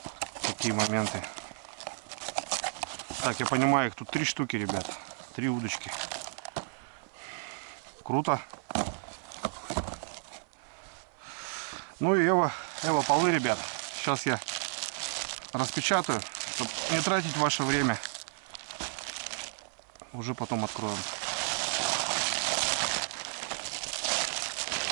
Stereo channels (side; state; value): left; silent; 56 dB below the other